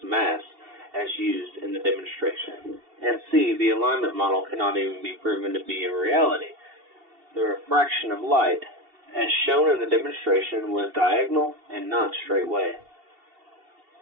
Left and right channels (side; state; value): left; late; 2.7 ms